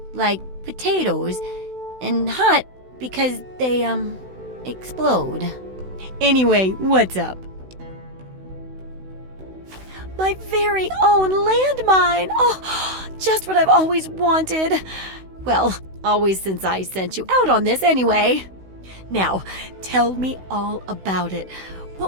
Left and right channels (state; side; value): late; left; 16 ms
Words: like potatoes, and hot because they, explode. Anyway, what's up? My very own landmine! Oh, just what I've always wanted. Well, always since I sent you out on this anyway. Now, tell me all about it.